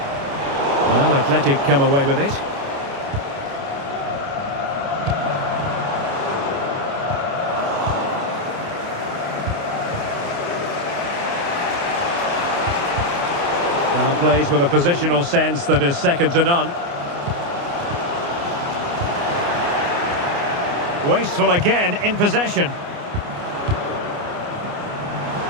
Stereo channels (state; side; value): late; left; 29 ms